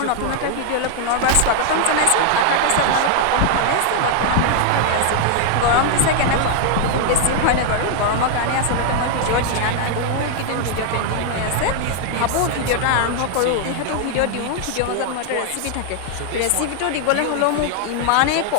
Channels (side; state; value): both; different; correlation 0.00